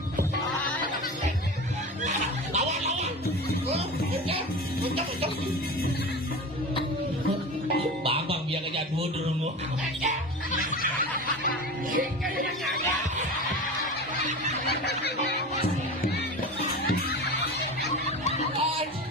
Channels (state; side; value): normal; both; correlation 0.30